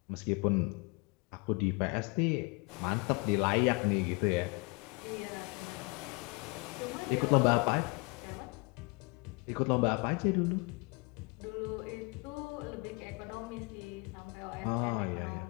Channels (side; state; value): right; quieter; 29.6 dB